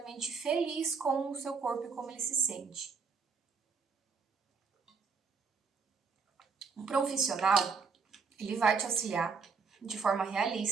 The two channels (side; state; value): left; quieter; 5.2 dB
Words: feliz com o seu corpo e como ele se sente. Um profissional, ele vai te auxiliar de forma